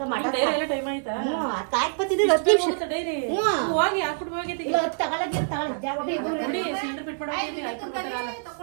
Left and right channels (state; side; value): silent; left; 61 dB below the other